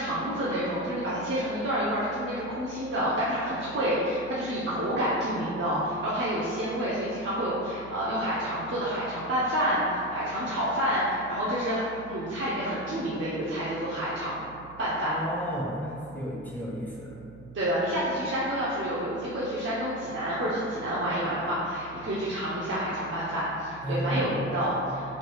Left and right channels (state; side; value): noise; right; hum, 19 dB below the sound